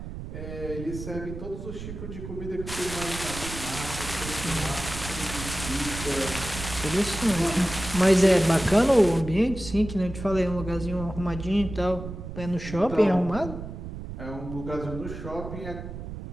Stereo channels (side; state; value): right; noise; rumble, 9 dB below the sound